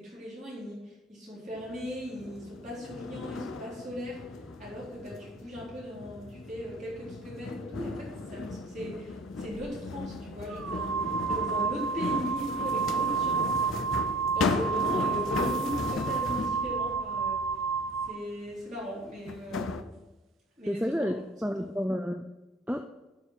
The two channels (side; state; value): both; normal; correlation 0.47